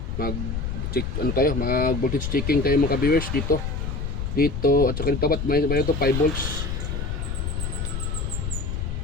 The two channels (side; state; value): left; noise; rumble, 3 dB below the sound